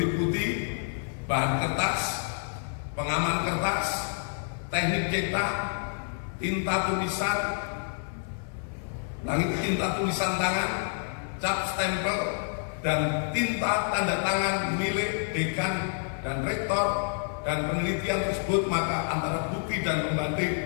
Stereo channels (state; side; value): silent; right; 56 dB below the other